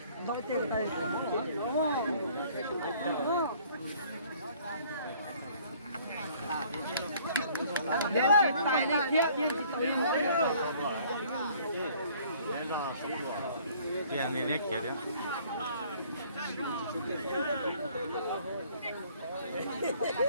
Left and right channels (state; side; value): inverted; both; correlation -0.57